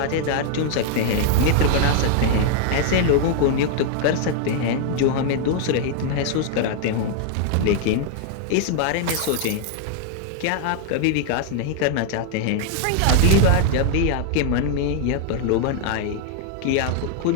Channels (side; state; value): both; different; correlation 0.00